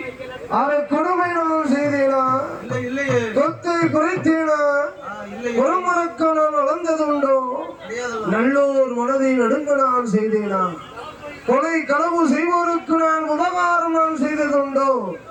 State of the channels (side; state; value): both; identical; correlation 1.00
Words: அதை கொடுமை நான் செய்தேனா இல்லையே சொத்தை குறைத்தேனா ஒரு மறக்க நான் வளர்ந்தது உண்டோ நல்லோர் மனதை நடுங்க நான் செய்தேனா கொலை களவு செய்வோருக்கு நான் உபகாரம் நான் செய்ததுண்டோ